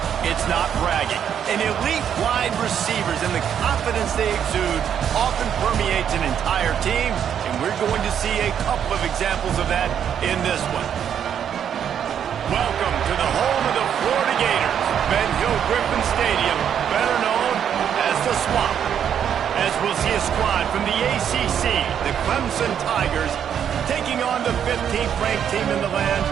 it's not bragging. And elite wide receivers and the confidence they exude often permeates an entire team, and we're going to see a couple of examples of that in this one. Welcome to the home of the Florida Gators, Ben Hill Griffin Stadium, better known as the Swamp. As we'll see a squad from the ACC, the Clemson Tigers, taking on the 15th ranked team in the land,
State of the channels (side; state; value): left; quieter; 8.8 dB